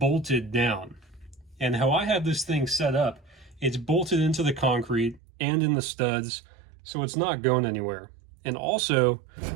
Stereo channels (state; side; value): drops out; left; at 5.2 s